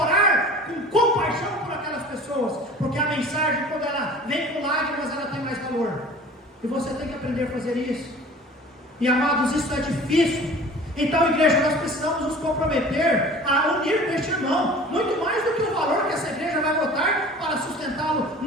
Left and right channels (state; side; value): normal; both; correlation 0.43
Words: com compaixão por aquelas pessoas, porque a mensagem, quando ela vem com lágrimas, ela tem mais valor. E você tem que aprender a fazer isso. E amados, isso é difícil. Então, igreja, nós precisamos nos comprometer a unir com este irmão, muito mais do que o valor que essa igreja vai botar para sustentá-lo